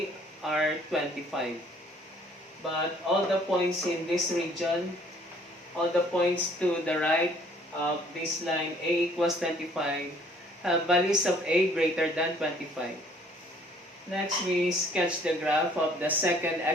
are 25. But all the points in this region, all the points to the right of this line A equals 25, have values of A greater than 25. Next, we sketch the graph of the second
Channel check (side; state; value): both; normal; correlation 0.59